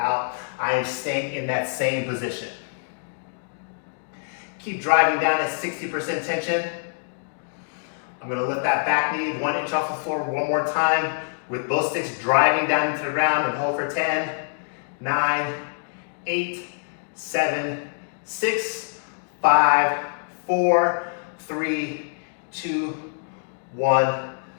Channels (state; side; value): silent; right; digital silence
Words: I am staying in that same position. Keep driving down at 60% tension. I'm going to lift that back knee 1 inch off the floor one more time with both sticks driving down into the ground, and hold for 10, 9, 8, 7, 6, 5, 4, 3, 2, 1,